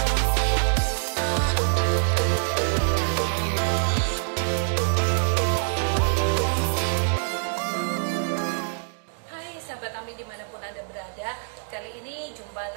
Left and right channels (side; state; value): left; silent; 62 dB below the other